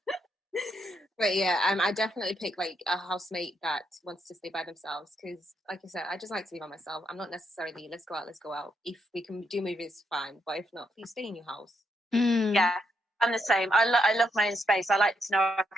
But yeah, I definitely pick like a housemate that wants to stay by themselves because, like I said, I just like to be by myself. I'm not necessarily let's go out. If we can do movies, fine. But if not, please stay in your house. Yeah, I'm the same. I love my own space. I like to know I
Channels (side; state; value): both; normal; correlation 0.77